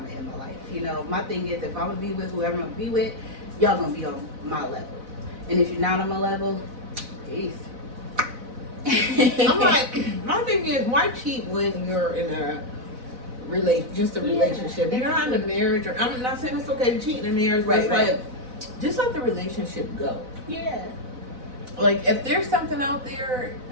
in my life. My thing is, if I'm going to be with whoever I'm going to be with, y'all going to be on my level. And if you're not on my level, peace. I'm like, my thing is, why cheat when you're in a relationship? You're not in a marriage, or I'm not saying it's okay to cheat in a marriage, but it's like, just let the relationship go. Yeah. Like, if there's something out there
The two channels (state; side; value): late; left; 4.0 ms